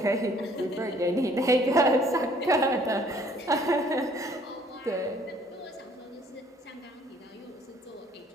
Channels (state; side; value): normal; both; correlation 0.59